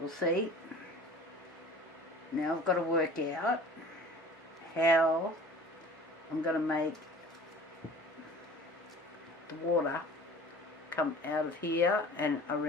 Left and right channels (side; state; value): both; normal; correlation 0.43